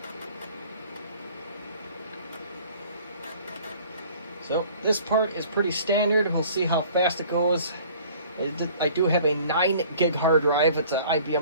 So this part is pretty standard. We'll see how fast it goes. I do have a 9 gig hard drive. It's an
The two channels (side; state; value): both; inverted; correlation -0.51